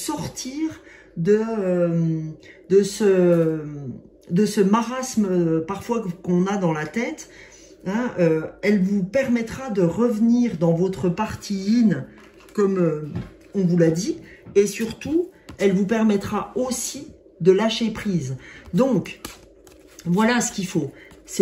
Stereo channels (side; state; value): both; identical; correlation 1.00